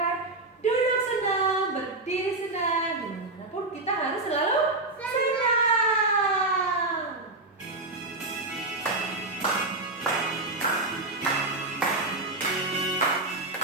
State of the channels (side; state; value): left; quieter; 3.1 dB